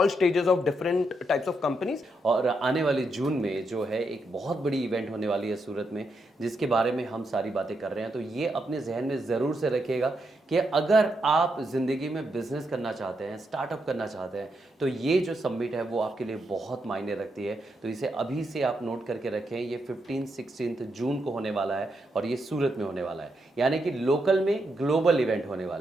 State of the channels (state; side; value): normal; both; correlation 0.82